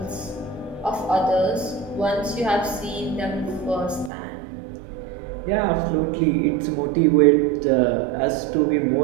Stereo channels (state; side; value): drops out; left; at 4.1 s